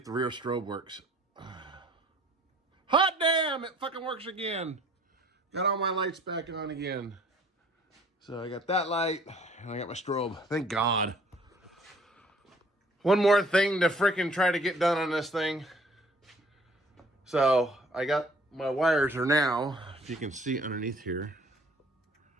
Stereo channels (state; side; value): normal; both; correlation 0.56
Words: the rear strobe works. Hot damn, it fucking works again. Got all my lights back on again. So I got that light, and I got my strobe. Thank God. One more thing to frickin' try to get done on this thing. So I got my wires are now, if you can see underneath here.